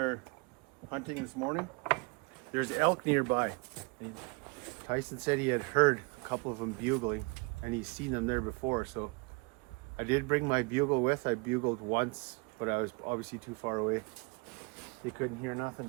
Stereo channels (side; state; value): left; quieter; 29.4 dB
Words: hunting this morning, there's elk nearby. And Tyson said he had heard a couple of them bugling, and he's seen them there before. So I did bring my bugle with. I bugled once, but I was obviously too far away. They couldn't hear